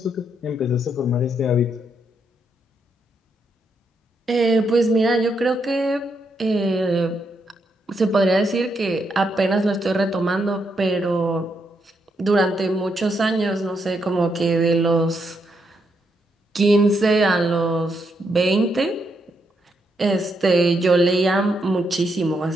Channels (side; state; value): both; normal; correlation 0.79